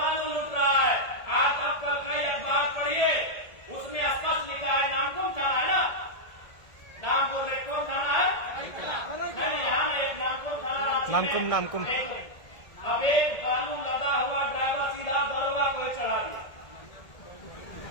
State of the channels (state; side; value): late; right; 1.8 ms